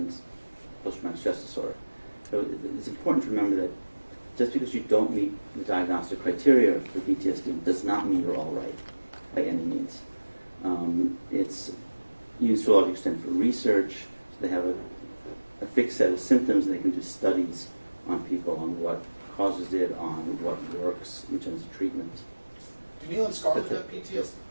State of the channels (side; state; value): both; inverted; correlation -1.00